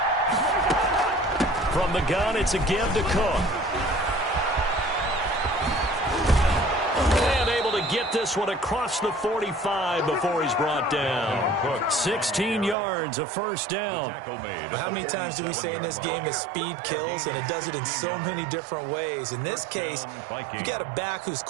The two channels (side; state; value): left; drops out; at 12.8 s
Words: From the gun, it's a give to Cook. And able to get this one across the 45 before he's brought down. 16 yards, a first down. How many times do we say in this game that speed kills, and it does it in so many different ways? In this case, you got a back who's